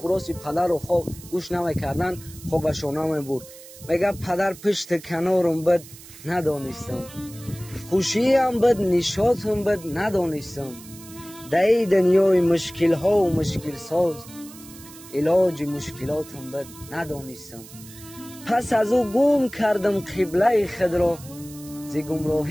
پدر رو خواب گوش نمیکردن. خوابشون نمیبرد. میگه پدر پشت کنارم بد ندانستم، خوشی هم بد نشاط هم بد ندانستم، در دنیای مشکل ها و مشکل ساز علاج مشکلات هم بد ندانستم. پس از او گم کردم قبله خود را، ز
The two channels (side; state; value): right; noise; hiss, 18 dB below the sound